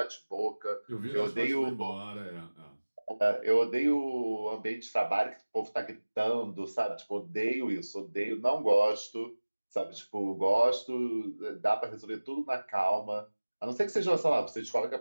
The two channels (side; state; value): both; inverted; correlation -1.00